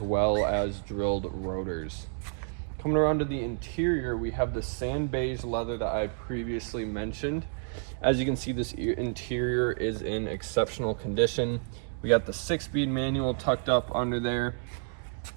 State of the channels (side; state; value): left; silent; digital silence